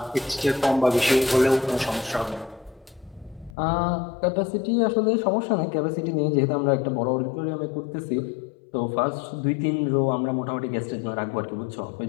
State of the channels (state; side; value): drops out; right; at 3.6 s